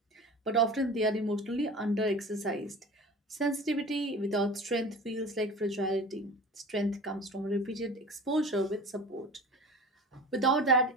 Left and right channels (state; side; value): normal; both; correlation 0.36